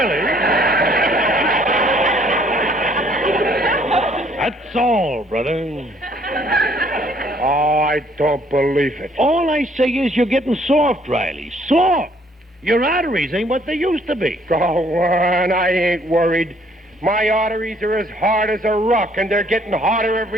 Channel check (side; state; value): both; normal; correlation 0.63